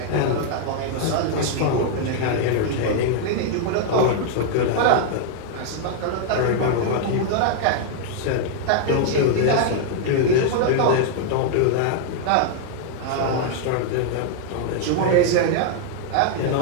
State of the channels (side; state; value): both; different; correlation 0.00